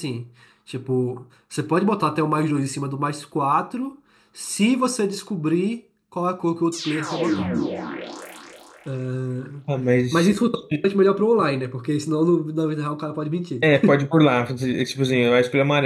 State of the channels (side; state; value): both; identical; correlation 1.00